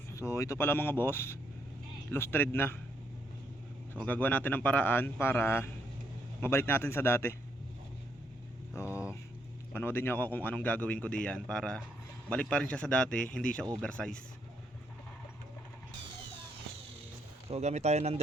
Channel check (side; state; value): both; normal; correlation 0.75